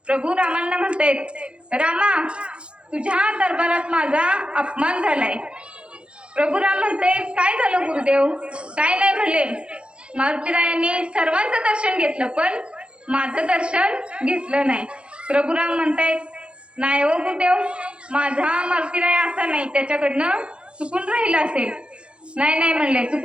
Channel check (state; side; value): late; left; 0.057 ms